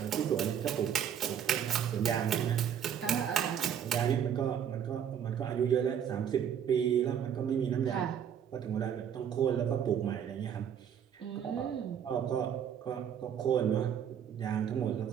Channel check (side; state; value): left; quieter; 8.7 dB